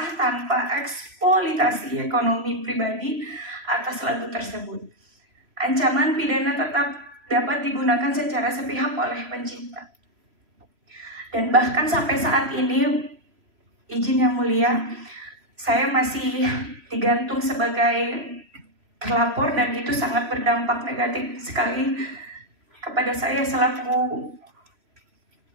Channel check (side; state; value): left; late; 3.0 ms